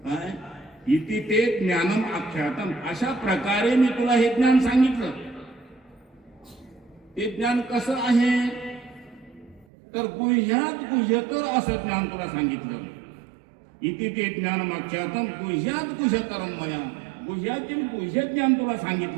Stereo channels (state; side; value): drops out; left; at 9.7 s